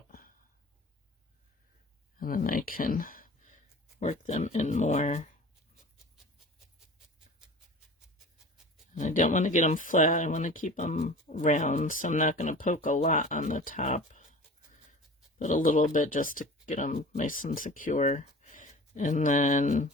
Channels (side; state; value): both; normal; correlation 0.39